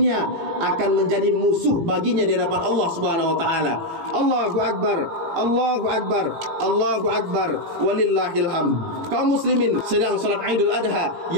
akan menjadi musuh baginya di hadapan Allah Subhanahu wa taala. Allahu akbar, Allahu akbar, Allahu akbar, walillahil hamd. Kaum muslimin sedang salat Idul Adha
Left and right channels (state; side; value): late; left; 18 ms